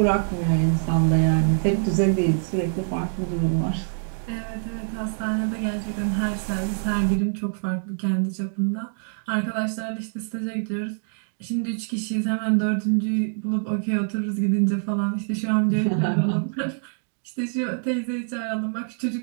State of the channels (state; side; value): silent; left; digital silence